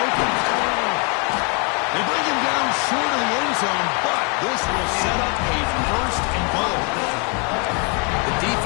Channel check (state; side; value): quieter; right; 34.8 dB